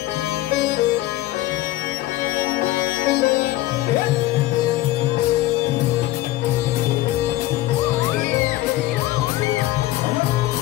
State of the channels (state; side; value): quieter; right; 16.3 dB